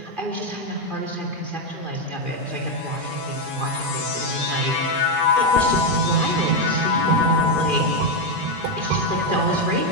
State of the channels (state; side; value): late; left; 2.4 ms